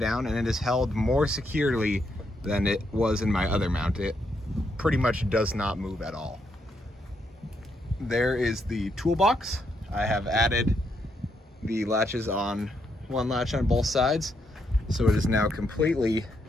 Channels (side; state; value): both; normal; correlation 0.78